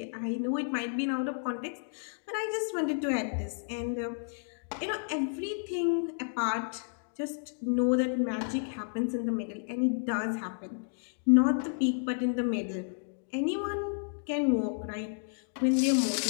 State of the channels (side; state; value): right; silent; digital silence